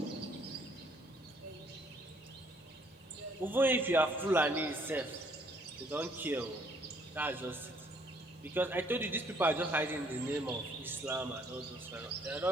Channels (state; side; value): normal; both; correlation 0.64